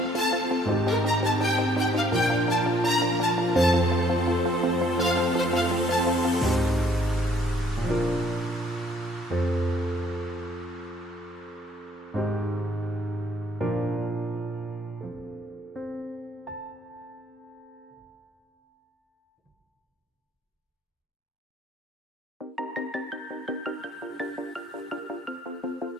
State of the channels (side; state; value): both; normal; correlation 0.63